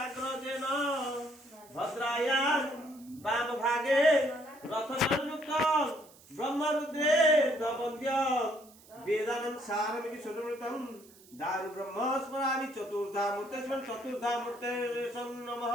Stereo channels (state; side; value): noise; right; hiss, 24 dB below the sound